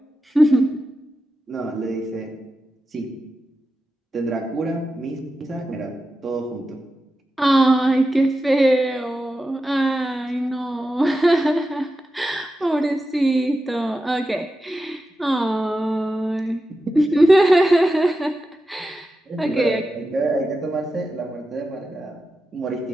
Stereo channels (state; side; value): normal; both; correlation 0.91